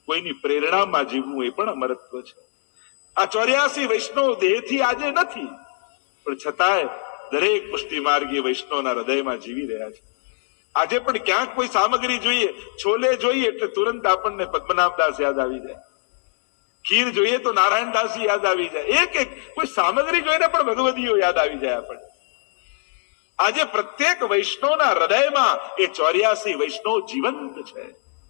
કોઈની પ્રેરણામાં જીવવું એ પણ અમરત્વ છે. આ 84 વૈષ્ણવ દેહથી આજે નથી, પણ છતાંય દરેક પુષ્ટિ માર્ગી વૈષ્ણવના હૃદયમાં જીવી રહ્યા છે. આજે પણ ક્યાંક કોઈ સામગ્રી જોઈએ, છોલે જોઈએ એટલે તુરંત આપણને પદ્મનાભદાસ યાદ આવી જાય, ખીર જોઈએ તો નારાયણદાસજી યાદ આવી જાય, એક એક કોઈ સામગ્રી જોઈને પણ ભગવદીઓ યાદ આવી જાય આપણને. આજે પ્રત્યેક વૈષ્ણવના હૃદયમાં એ 84 વૈષ્ણવ જીવંત છે,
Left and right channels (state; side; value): silent; right; digital silence